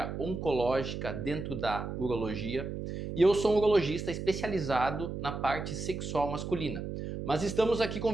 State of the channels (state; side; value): noise; right; hum, 6 dB below the sound